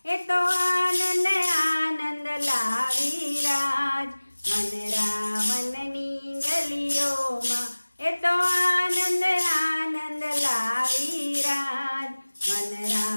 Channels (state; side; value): inverted; both; correlation -1.00